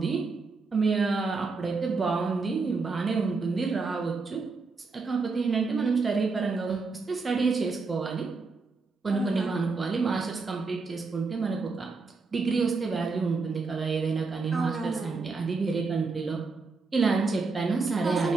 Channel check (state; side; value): quieter; left; 4.2 dB